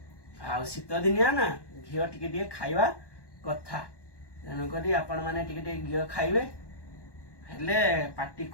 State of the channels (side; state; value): right; late; 1.1 ms